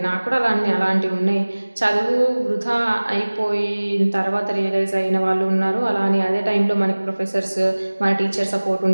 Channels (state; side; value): inverted; both; correlation -1.00